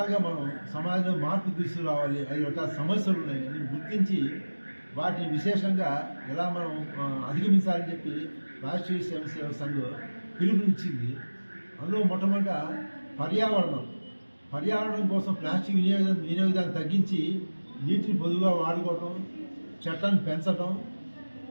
మనం సమాజంలో మార్పు తీసుకురావాలి, 5 రకాల సమస్యలు ఉన్నాయని గుర్తించి వాటిని విశేషంగా ఎలా మనం అధిగమించాలని చెప్పి రాష్ట్రీయ సేవా సంఘం పిలుపునిచ్చింది. అందులో మొట్టమొదట పర్యావరణం కోసం ప్లాస్టిక్ వినియోగాన్ని తగ్గించి నీటిని పొదువుగా వాడుకోవటం, చెట్లను పెంచడం,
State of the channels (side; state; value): both; inverted; correlation -1.00